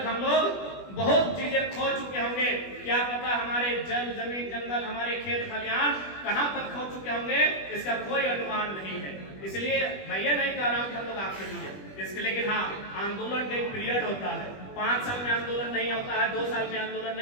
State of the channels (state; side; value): late; right; 21 ms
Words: हम लोग बहुत चीजें खो चुके होंगे। क्या पता हमारे जल, जमीन, जंगल, हमारे खेत खलिहान कहां तक खो चुके होंगे, इसका कोई अनुमान नहीं है। इसलिए मैं ये नहीं कह रहा हूं कि हम लोग आखिरी हैं इसके, लेकिन हाँ, आंदोलन का एक पीरियड होता है। 5 साल में आंदोलन नहीं होता है, 2 साल में आंदोलन